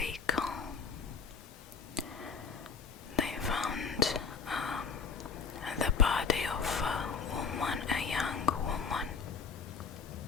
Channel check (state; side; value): quieter; right; 5.6 dB